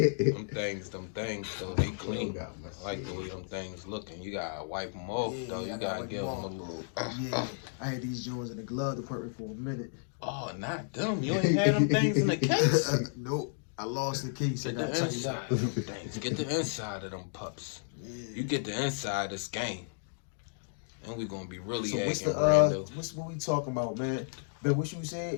things, though, they clean. I like the way them things looking. You gotta wipe them off, though. You gotta give them a little. Yeah, I had these joints in the glove department for a minute. Oh, not them. You ain't had them things in the case. Nope, I lost the case. I Get the got tightened inside up. of them things. Get the inside of them pups. You get the inside of this game. And we gonna be really So what's acting the random. what we talking about, man? Ben, what you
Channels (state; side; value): silent; right; digital silence